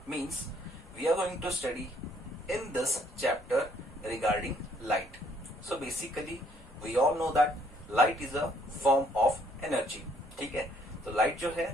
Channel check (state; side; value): normal; both; correlation 0.65